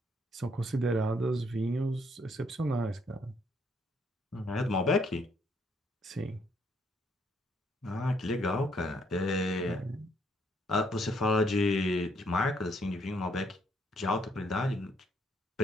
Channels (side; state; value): both; normal; correlation 0.69